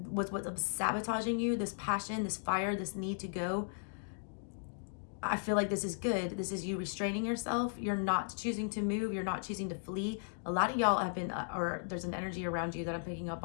what's sabotaging you, this passion, this fire, this need to go, I feel like this is good. This is you restraining yourself. You're not choosing to move. You're not choosing to flee. A lot of y'all have been, or there's an energy around you that I'm picking up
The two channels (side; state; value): right; silent; digital silence